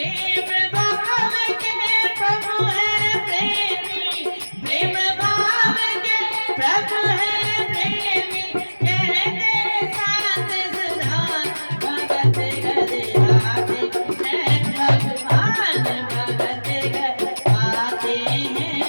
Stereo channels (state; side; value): inverted; both; correlation -1.00